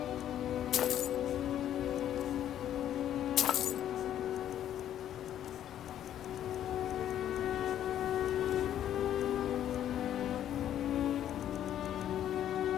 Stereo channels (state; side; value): quieter; right; 10.9 dB